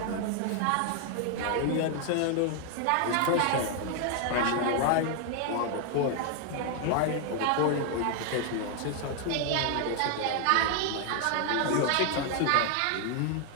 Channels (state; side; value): different; both; correlation 0.00